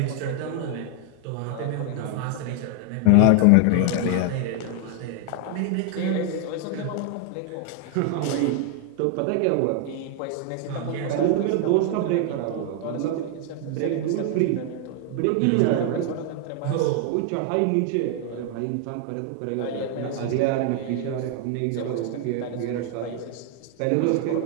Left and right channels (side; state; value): both; different; correlation 0.00